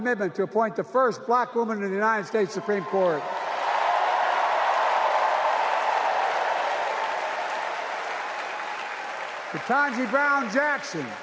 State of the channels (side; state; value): both; identical; correlation 1.00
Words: to appoint the first black woman in the United States Supreme Court. Ketanji Brown Jackson,